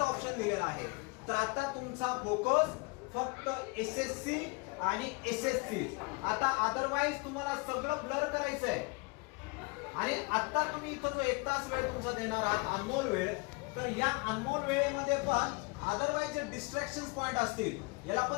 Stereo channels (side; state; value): right; quieter; 28.7 dB